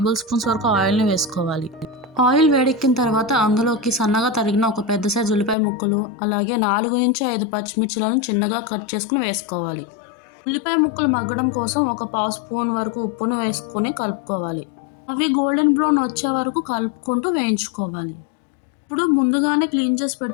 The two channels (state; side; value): drops out; right; at 5.6 s